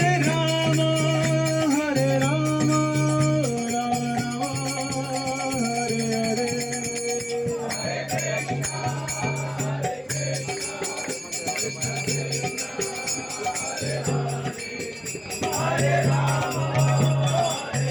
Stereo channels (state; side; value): identical; both; correlation 1.00